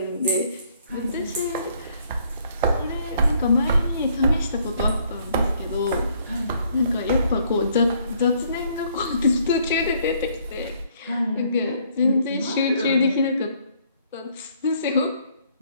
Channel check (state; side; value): inverted; both; correlation -0.66